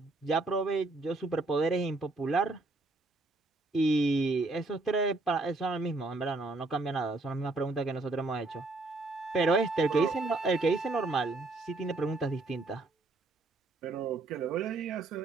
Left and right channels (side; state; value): left; quieter; 3.2 dB